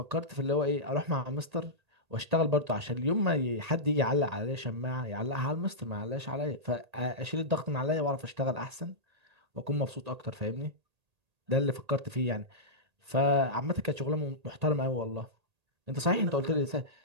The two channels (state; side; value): late; left; 1.8 ms